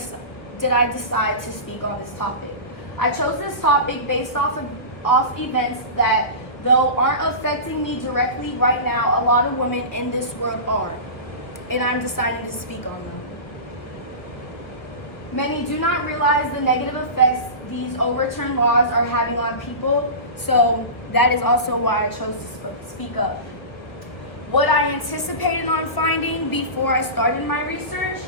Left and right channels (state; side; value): late; right; 1.1 ms